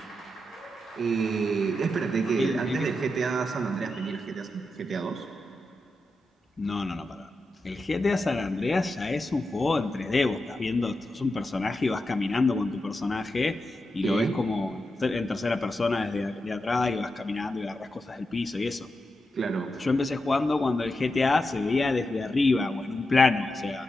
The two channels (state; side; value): normal; both; correlation 0.88